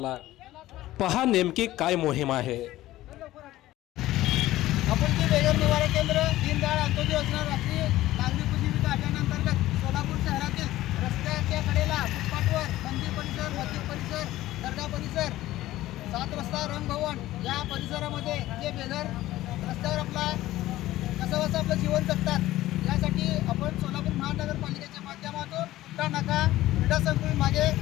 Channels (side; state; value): right; quieter; 15.7 dB